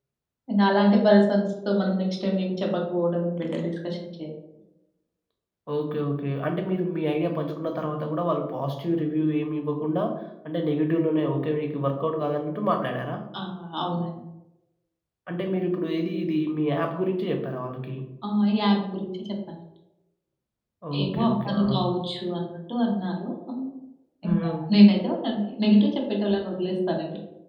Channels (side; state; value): both; identical; correlation 1.00